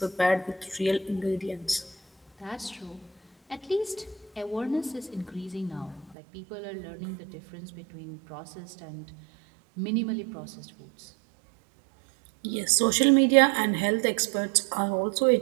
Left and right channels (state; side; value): drops out; left; at 6.2 s